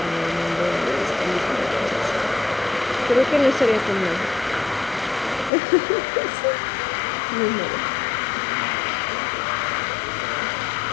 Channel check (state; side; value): drops out; right; at 5.5 s